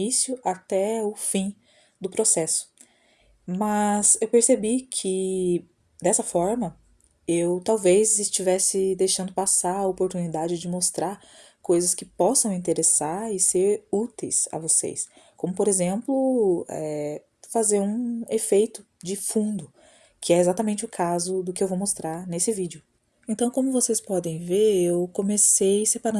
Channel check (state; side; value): identical; both; correlation 1.00